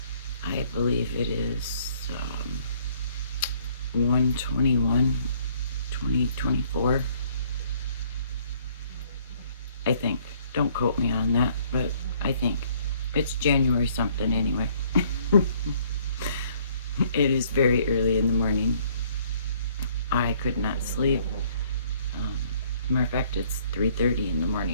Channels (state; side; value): inverted; both; correlation -0.62